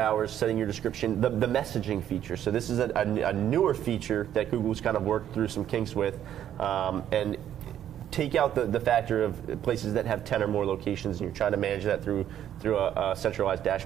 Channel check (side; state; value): left; quieter; 10.7 dB